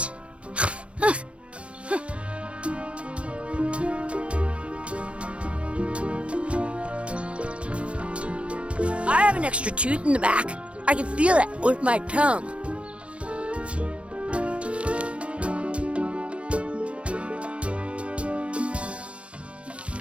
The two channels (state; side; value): late; left; 0.061 ms